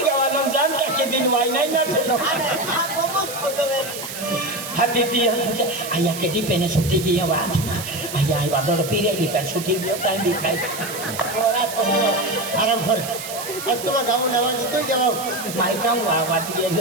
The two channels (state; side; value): noise; right; hiss, 9 dB below the sound